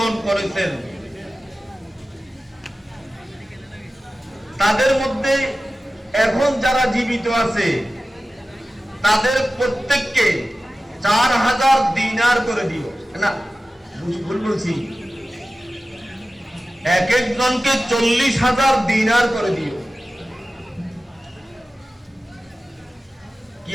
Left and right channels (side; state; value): both; normal; correlation 0.95